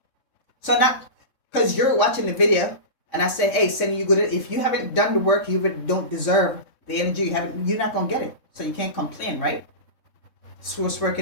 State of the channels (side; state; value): right; late; 3.6 ms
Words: So not because you're watching the video and I say, hey, send you good. If you haven't done the work, you don't deserve the energy. You're not going to get it. So you can't complain, right? Source work